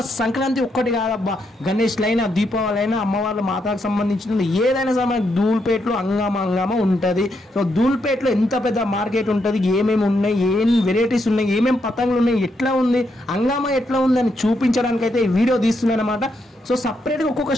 సంక్రాంతి ఒక్కటి కాదబ్బా, గణేష్ అయినా, దీపావళి అయినా, అమ్మవాళ్ళ మాతకు సంబంధించిన ఏదైనా సరే మనకు ధూల్పేట్లో హంగామా ఉంటుంది. సో ధూల్పేట్లో ఎంత పెద్ద మార్కెట్ ఉంటుంది, ఏమేమి ఉన్నాయి, ఏం వెరైటీస్ ఉన్నాయి, ఏమేమి పతంగులు ఉన్నాయి, ఎట్లా ఉంది హంగామా, ఎట్లా ఉంది అని చూపించడానికి అయితే ఈ వీడియో తీస్తున్నాను అనమాట. సో సపరేట్గా ఒక్కొక్క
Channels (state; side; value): normal; both; correlation 0.79